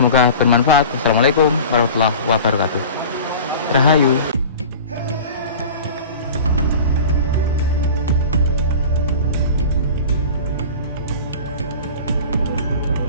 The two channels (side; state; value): both; inverted; correlation -0.37